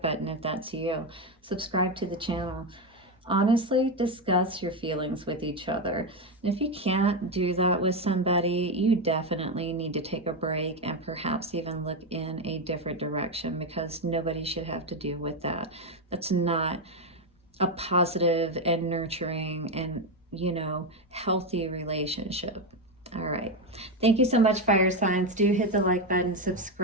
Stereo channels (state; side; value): normal; both; correlation 0.10